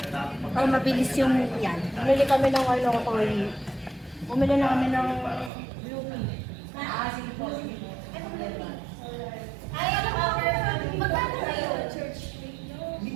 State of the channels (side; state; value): left; drops out; at 5.5 s